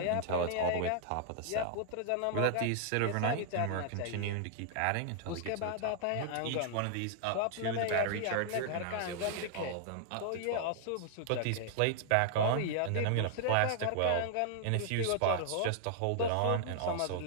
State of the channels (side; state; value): both; different; correlation 0.00